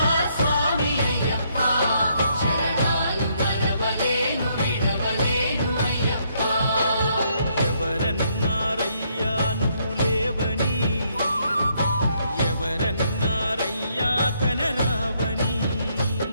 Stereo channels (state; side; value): inverted; both; correlation -0.72